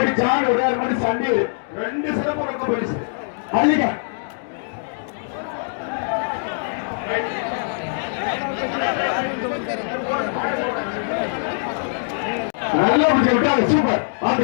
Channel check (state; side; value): silent; right; digital silence